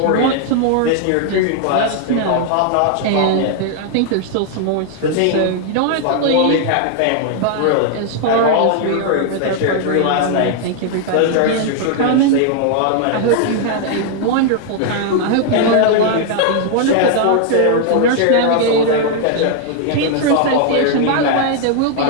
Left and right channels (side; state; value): both; different; correlation 0.00